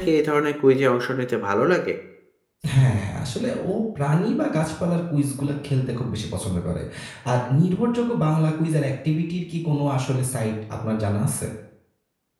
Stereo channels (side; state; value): both; identical; correlation 1.00